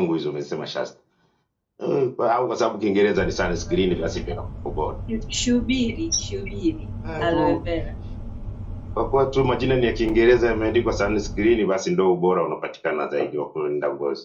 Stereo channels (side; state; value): both; identical; correlation 1.00